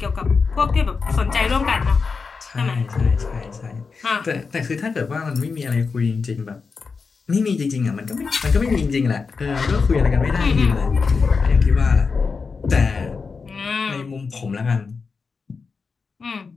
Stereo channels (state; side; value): quieter; right; 4.9 dB